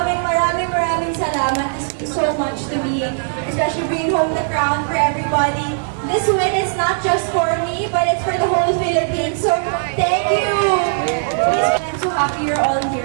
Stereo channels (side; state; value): left; silent; digital silence